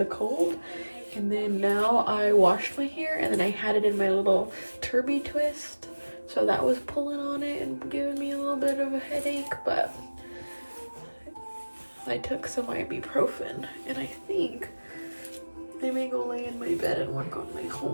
cold. And then now I washed my hair, and then I had it in my little turby twist, so that was pulling on it and giving me a little bit of a headache. But I took some ibuprofen, and I think I may go lay in my bed and work on my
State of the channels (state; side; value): inverted; both; correlation -1.00